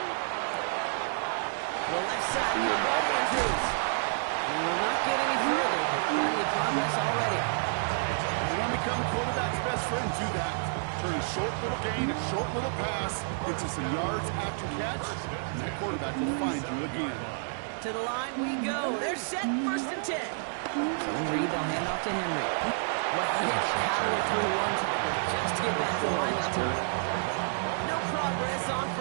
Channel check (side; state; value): left; silent; digital silence